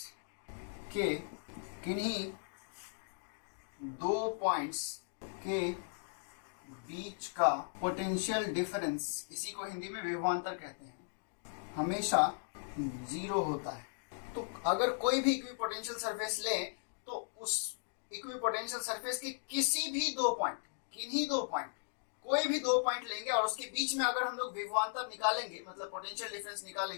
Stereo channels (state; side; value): silent; right; digital silence